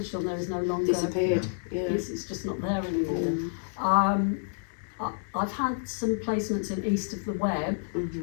on there is no longer Disappeared. Yeah. It's just not there anymore. I've had some placements in East of the Web.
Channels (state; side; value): silent; right; digital silence